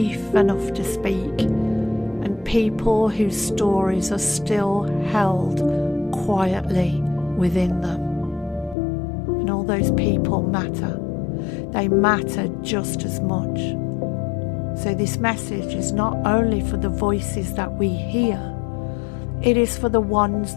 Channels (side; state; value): right; drops out; at 8.8 s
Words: enough to speak. And people whose stories are still held quietly within them. And all those people matter. They matter just as much. So this message is not only for the voices that we hear, it is for the ones